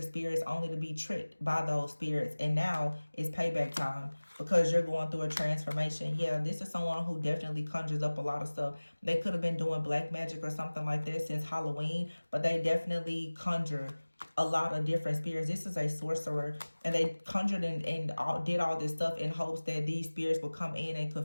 spirits only to be tricked by those spirits. And now it's payback time because you're going through a transformation. Yeah, this is someone who definitely conjures up a lot of stuff. They could have been doing black magic or something like this since Halloween, but they definitely conjure a lot of different spirits. This is a sorcerer, and they conjured and did all this stuff in hopes that these spirits will come in and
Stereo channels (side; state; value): both; inverted; correlation -1.00